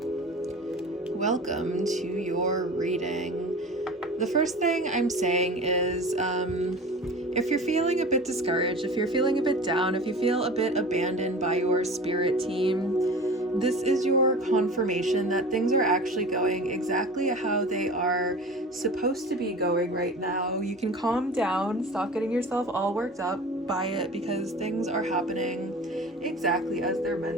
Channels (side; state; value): both; normal; correlation 0.37